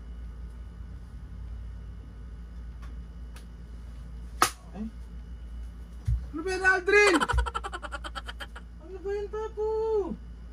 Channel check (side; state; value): both; identical; correlation 1.00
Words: Ay? Ano ba yan, Aldrin? Ano ba yan, Papo?